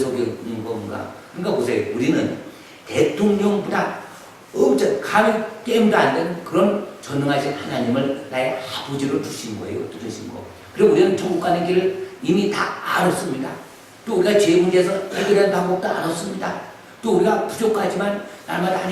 건가. 그러니까 보세요. 우리는 대통령보다 엄청 감히 게임도 안 되는 그런 전능하신 하나님을 나의 아버지로 주신 거예요. 주신 거. 그리고 우리는 천국 가는 길을 이미 다 알았습니다. 또 우리가 죄 문제에서 해결하는 방법도 알았습니다. 또 우리가 부족하지만 날마다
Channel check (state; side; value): identical; both; correlation 1.00